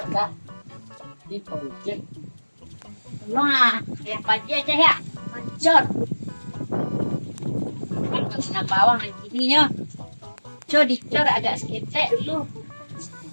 Wah, yang pagi aja ya, mancot. Kena bawang gininya. Cor dicor agak seketek dulu.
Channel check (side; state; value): both; inverted; correlation -1.00